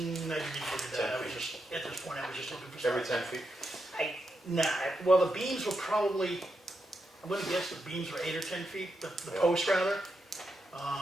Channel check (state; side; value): normal; both; correlation 0.84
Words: look at that. I was just, at this point, I was just looking for stuff. Every 10 feet? Well, the beams were probably, I'm gonna guess the beams were 8 or 10 feet, the Yeah. post rather.